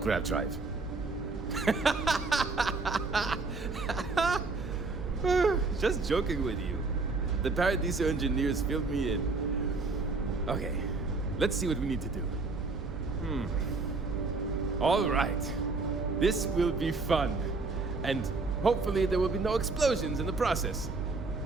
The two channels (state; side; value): quieter; left; 3.8 dB